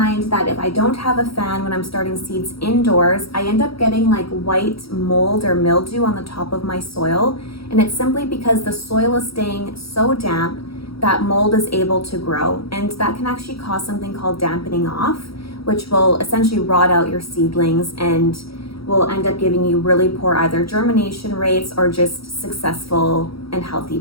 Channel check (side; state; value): right; late; 0.75 ms